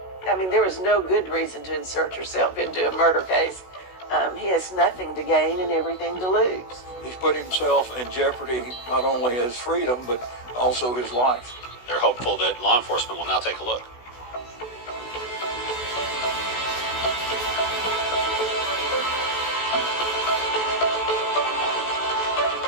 I mean, there is no good reason to insert yourself into a murder case. He has nothing to gain and everything to lose. He's put himself in jeopardy, not only his freedom, but also his life. They're hopeful that law enforcement will now take a look.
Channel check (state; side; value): late; right; 16 ms